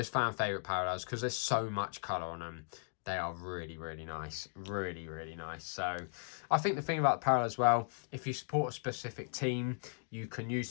fan favourite parallels, because there's so much colour on them, they are really, really nice. Really, really nice. So I think the thing about the parallel as well, if you support a specific team, you can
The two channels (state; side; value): silent; right; digital silence